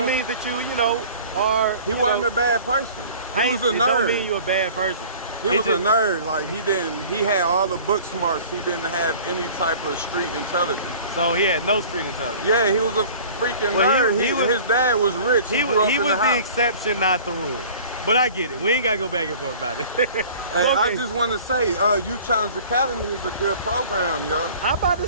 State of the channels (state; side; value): inverted; both; correlation -0.45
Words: means that you are. He wasn't a bad person. He was a nerd. It don't mean you're a bad person. He was a nerd. Like he had all the book smarts. He didn't have any type of street intelligence. So he had no street intelligence. Yeah, he was a freaking nerd. His dad was rich. He grew up in was the house. exception, not the rule. But I get it. We ain't gotta go back and forth about it. Hey, I just want to say, Youth Challenge Academy is a good program, yo. I'm about